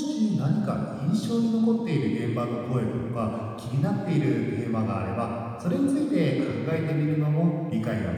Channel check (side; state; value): both; identical; correlation 1.00